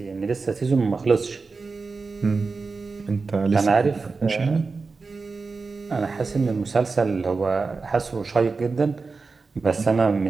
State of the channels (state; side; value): quieter; left; 4.3 dB